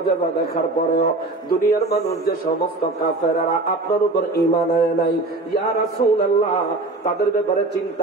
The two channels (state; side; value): quieter; left; 3.0 dB